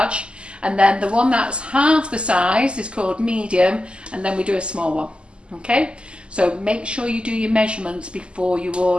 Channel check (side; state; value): left; late; 0.052 ms